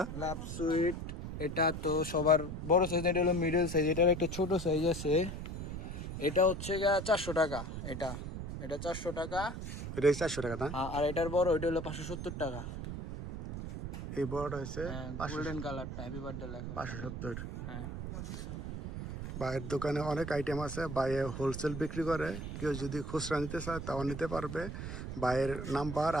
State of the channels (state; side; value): noise; right; rumble, 6 dB below the sound